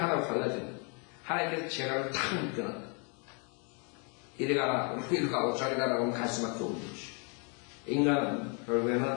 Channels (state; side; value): quieter; right; 36.5 dB